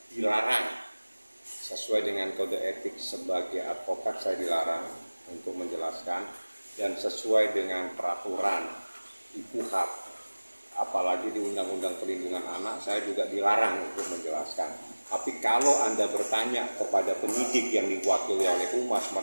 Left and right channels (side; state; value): both; inverted; correlation -1.00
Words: dilarang sesuai dengan kode etik sebagai advokat, saya dilarang untuk menjelaskan, dan sesuai dengan peraturan di KUHAP, apalagi di Undang-Undang Perlindungan Anak, saya juga dilarang untuk menjelaskan. Tapi kalau Anda bertanya kepada penyidik yang diwakili oleh Humas,